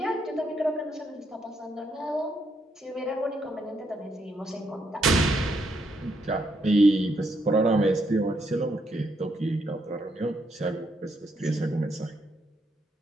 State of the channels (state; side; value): normal; both; correlation 0.76